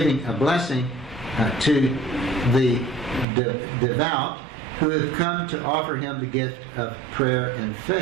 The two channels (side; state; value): left; drops out; at 3.2 s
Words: a blessing to the devout who have come to offer him the gift of prayer and